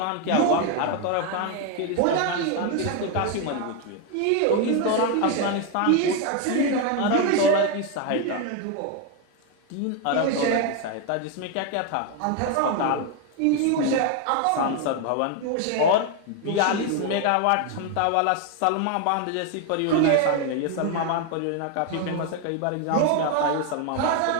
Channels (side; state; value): both; different; correlation 0.01